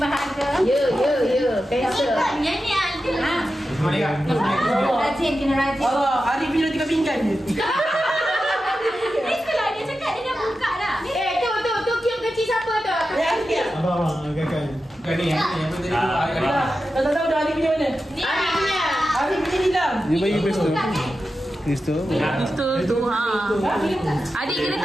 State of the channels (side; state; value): both; normal; correlation 0.91